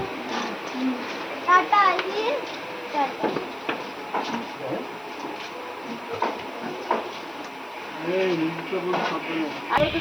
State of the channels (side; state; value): left; noise; hiss, 28 dB below the sound